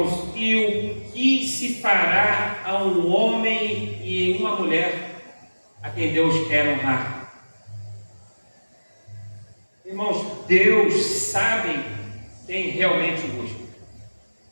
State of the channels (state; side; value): inverted; both; correlation -1.00